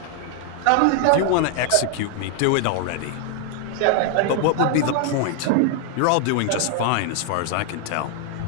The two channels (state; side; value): different; both; correlation 0.00